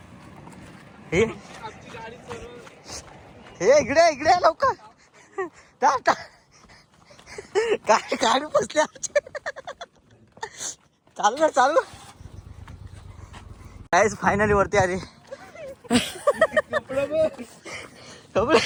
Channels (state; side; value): identical; both; correlation 1.00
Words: हे इकडे लवकर. गाडी बसली आमची. चालू गाईज फायनली वरती आली.